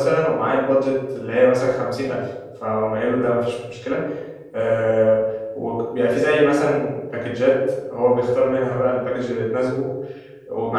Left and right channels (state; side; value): identical; both; correlation 1.00